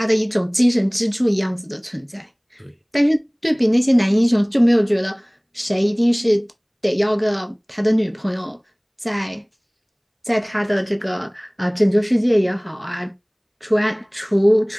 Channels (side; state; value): both; identical; correlation 1.00